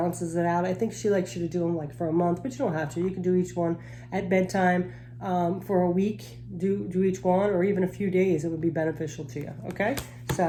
it out. I think she likes you to do them like for a month, but you don't have to. You can do each one at bedtime for a week. Do each one, or even a few days. It would be beneficial to you. Okay,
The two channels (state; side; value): identical; both; correlation 1.00